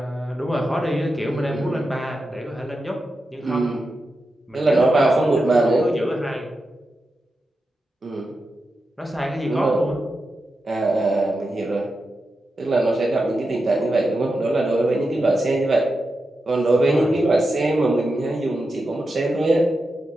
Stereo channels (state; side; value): normal; both; correlation 0.89